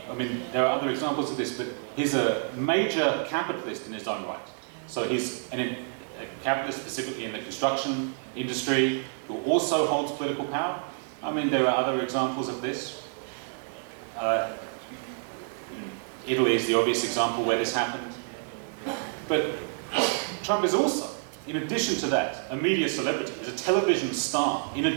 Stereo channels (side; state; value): left; silent; 59 dB below the other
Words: are other examples of this, but he's a major capitalist in his own right. So he's a capitalist specifically in the construction industry who also holds political power. I mean, there are other examples of this. Italy is the obvious example where this happened. But Trump is also, in addition to that, a media celebrity. He's a television star, in